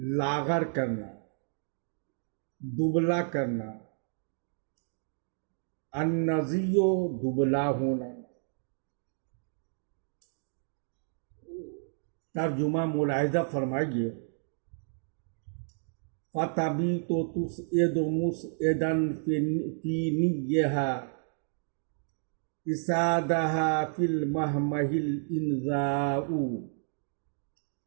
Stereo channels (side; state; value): left; silent; digital silence